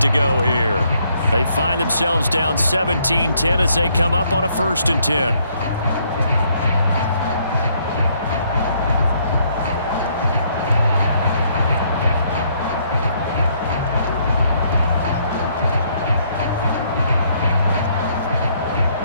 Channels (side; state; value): both; inverted; correlation -0.69